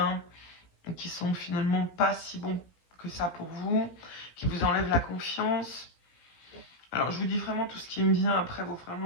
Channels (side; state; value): right; late; 17 ms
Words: qui sont finalement pas si bons que ça pour vous, qui vous enlèvent la confiance. Alors je vous dis vraiment tout ce qui me vient, après vous